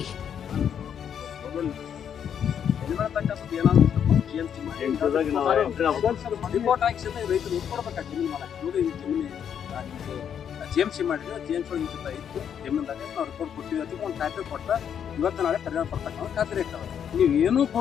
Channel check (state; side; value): quieter; right; 8.4 dB